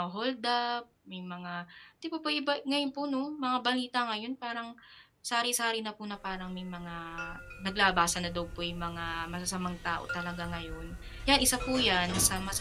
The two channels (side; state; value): both; identical; correlation 1.00